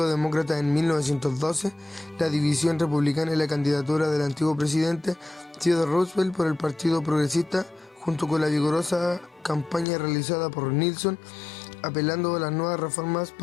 Demócrata en 1912, la división republicana y la candidatura del antiguo presidente Theodore Roosevelt por el Partido Progresista, junto con la vigorosa campaña realizada por Nixon, apelando a las nuevas reformas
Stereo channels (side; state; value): right; drops out; at 9.9 s